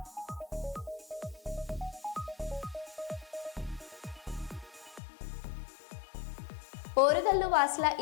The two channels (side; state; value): right; drops out; at 5.0 s